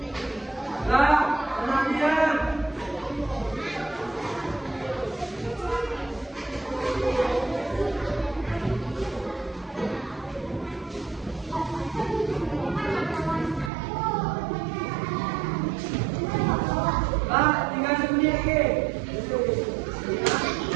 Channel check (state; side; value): drops out; left; at 13.7 s